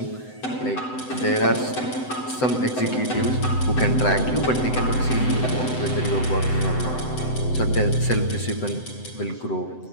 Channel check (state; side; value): late; right; 7.9 ms